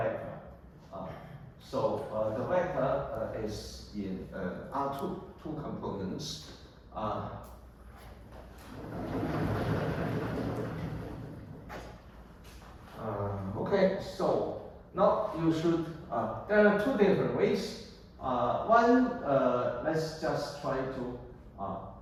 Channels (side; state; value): both; identical; correlation 1.00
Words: So the vector is in R2, 2 components. Okay, so now you should, there are 2 different ways. One, let's just try to